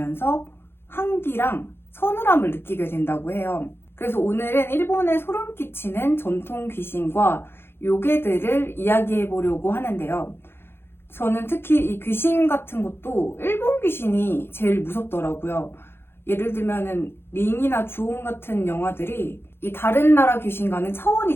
한기랑 서늘함을 느끼게 된다고 해요. 그래서 오늘은 일본에 소름 끼치는 전통 귀신과 요괴들을 이야기해 보려고 하는데요. 저는 특히 이 귀신 같은 것도 일본 귀신이 제일 무섭더라고요. 예를 들면은 링이나 주온 같은 영화들이 이 다른 나라 귀신과는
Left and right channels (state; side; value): late; right; 0.11 ms